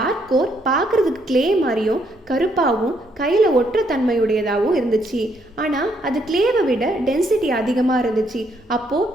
கோர் பார்க்குறதுக்கு கிளே மாதிரியும் கருப்பாகவும் கையில் ஒற்ற தன்மையுடையதாகவும் இருந்துச்சு. ஆனால் அது கிளேவை விட டென்சிட்டி அதிகமாக இருந்துச்சு. அப்போது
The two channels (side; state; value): both; normal; correlation 0.72